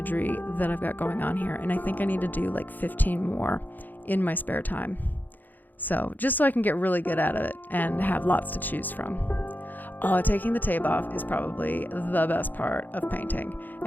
that I've got going on here, and I think I need to do like 15 more in my spare time. So just so I can get really good at it and have lots to choose from. Oh, taking the tape off is probably the best part of painting,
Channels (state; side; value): late; right; 0.086 ms